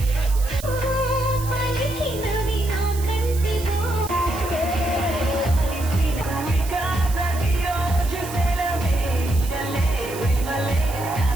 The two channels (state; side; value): noise; right; hiss, 13 dB below the sound